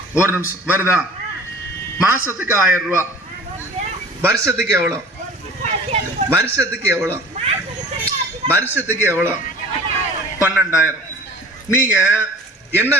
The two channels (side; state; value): both; normal; correlation 0.44